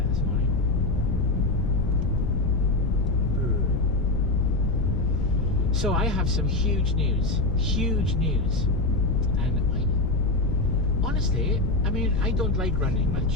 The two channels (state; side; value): noise; left; rumble, 4 dB below the sound